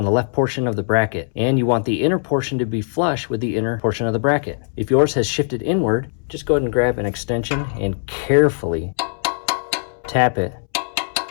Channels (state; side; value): silent; right; 65 dB below the other